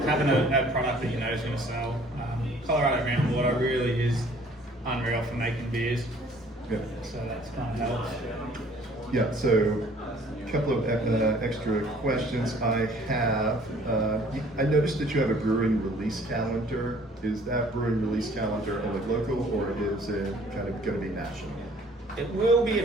having a product that you know is going to sell. Colorado groundwater really is unreal for making beers. Yeah. So that's kind of helps. Yeah, so a couple of extra questions I have. I noticed that you have a brewing release calendar. Is that brewing release calendar only local, or is it kind of going to be national? It will be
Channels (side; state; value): both; normal; correlation 0.56